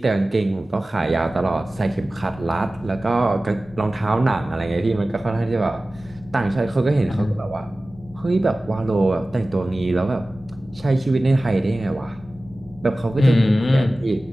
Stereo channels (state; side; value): normal; both; correlation 0.97